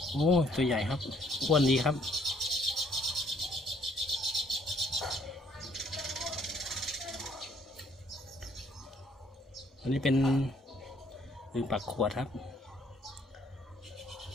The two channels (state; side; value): normal; both; correlation 0.64